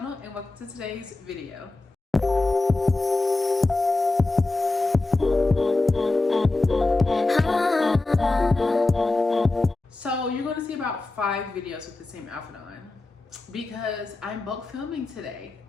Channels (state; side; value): quieter; right; 3.1 dB